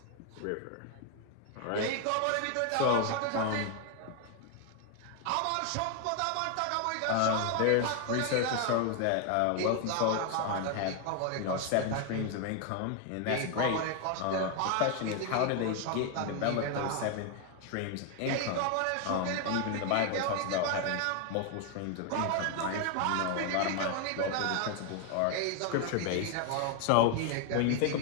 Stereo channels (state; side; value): different; both; correlation 0.01